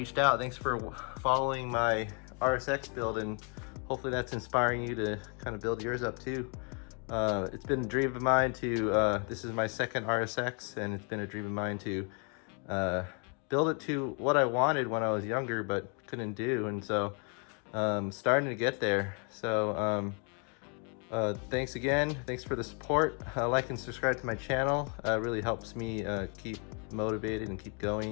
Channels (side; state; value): right; quieter; 37.7 dB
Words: out. Thanks for following my RSX build, and hopefully that's inspiring you to kind of build yours up too. It's been a dream of mine to, this is my second RSX, and it's been a dream of mine to build it to what I wanted when I was younger but couldn't do, and so starting to get there. So thanks again. Thanks for the support. Like and subscribe to my channel. Really helps me keep motivated and keep